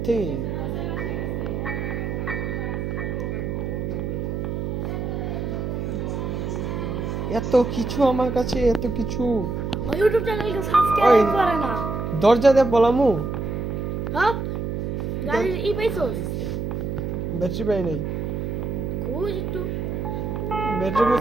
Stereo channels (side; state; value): right; noise; hum, 3 dB below the sound